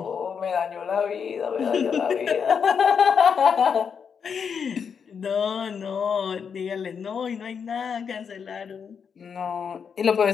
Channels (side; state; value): right; quieter; 6.7 dB